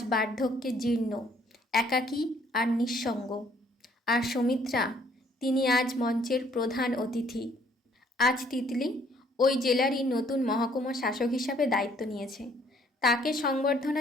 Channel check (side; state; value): both; normal; correlation 0.63